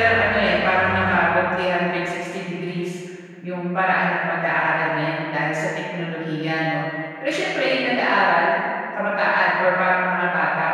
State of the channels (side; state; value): both; identical; correlation 1.00